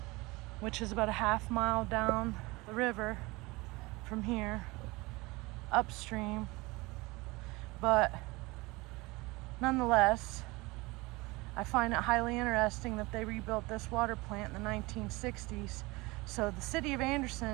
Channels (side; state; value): left; quieter; 23.2 dB